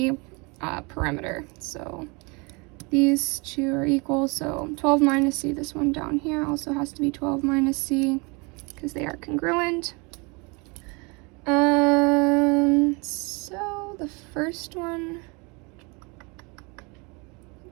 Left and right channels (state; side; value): quieter; left; 29.5 dB